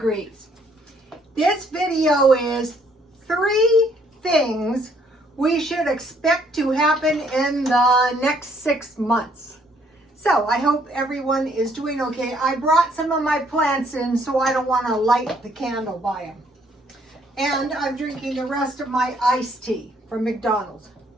This video is 3 things we should expect to happen in the next 6 months. So I hope everyone is doing okay. I brought some of my plants in, so I don't want to light the candle by them. And I'm drinking the rest of my iced tea from McDonald's.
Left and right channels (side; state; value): both; normal; correlation 0.66